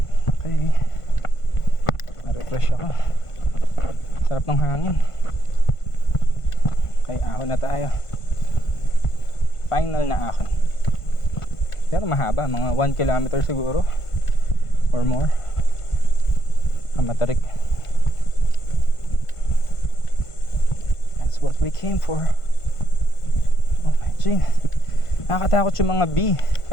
Okay. Na-refresh ako. Sarap ng hangin. Okay, ahon na tayo. Final na ahon. Pero mahaba, mga 1 kilometer siguro or more. Ang matarik. That's what we came for. Oh my G. Nakakatakot yung mga bee.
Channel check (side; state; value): right; late; 1.5 ms